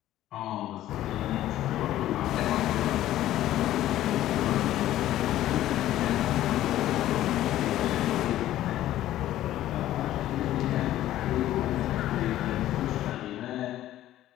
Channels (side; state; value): right; quieter; 13.6 dB